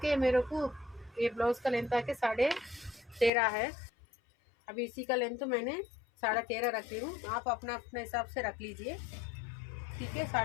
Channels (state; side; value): drops out; right; at 3.3 s